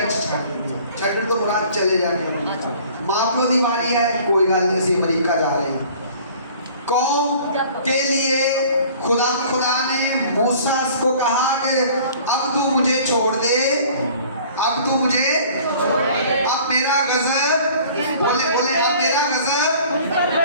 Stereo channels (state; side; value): inverted; both; correlation -0.50